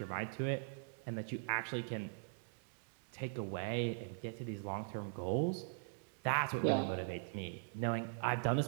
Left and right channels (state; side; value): silent; left; digital silence